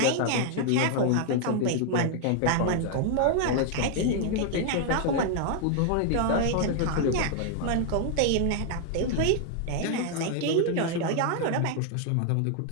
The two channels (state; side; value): different; both; correlation 0.00